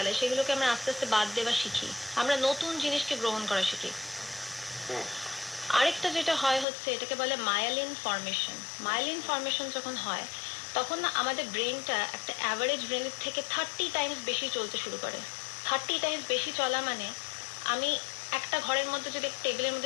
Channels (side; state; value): right; drops out; at 6.7 s